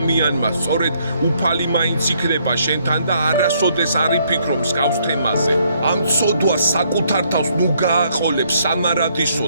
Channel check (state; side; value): inverted; both; correlation -0.69